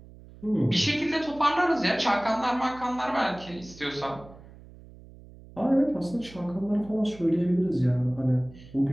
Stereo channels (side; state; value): right; noise; hum, 20 dB below the sound